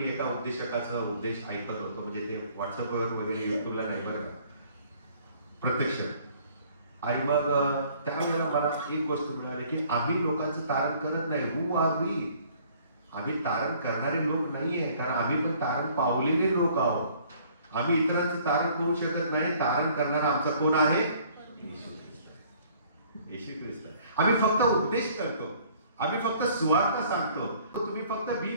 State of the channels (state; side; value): inverted; both; correlation -0.57